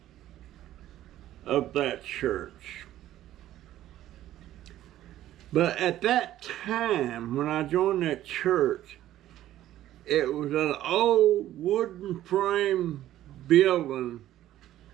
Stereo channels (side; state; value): left; quieter; 13.3 dB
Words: of that church. But at that time, when I joined that church, it was an old wooden frame building.